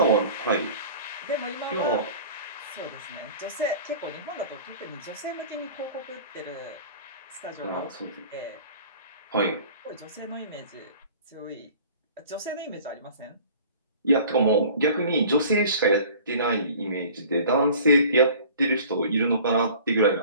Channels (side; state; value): both; inverted; correlation -0.45